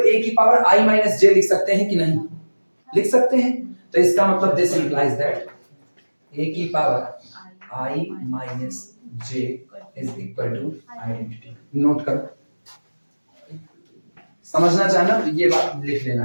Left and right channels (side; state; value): both; inverted; correlation -1.00